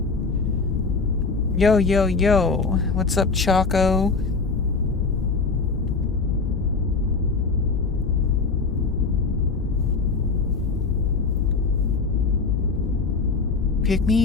Yo, yo, yo. What's up, Choco? Pick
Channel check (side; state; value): right; quieter; 4.4 dB